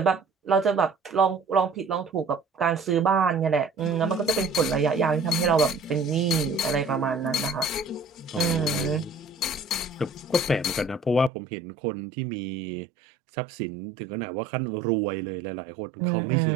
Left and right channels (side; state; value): left; drops out; at 11.3 s